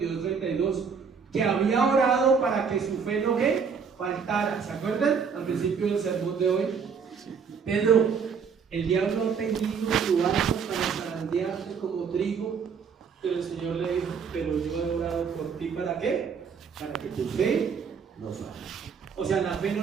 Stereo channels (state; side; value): quieter; left; 6.2 dB